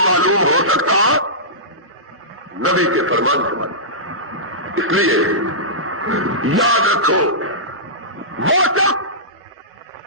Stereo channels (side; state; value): both; normal; correlation -0.19